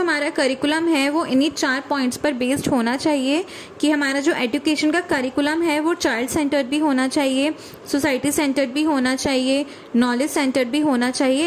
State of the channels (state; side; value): identical; both; correlation 1.00